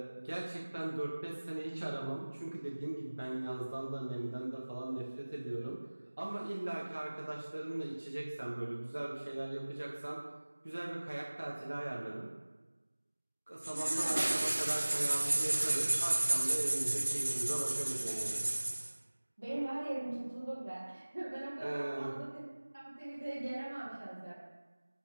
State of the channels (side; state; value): both; inverted; correlation -1.00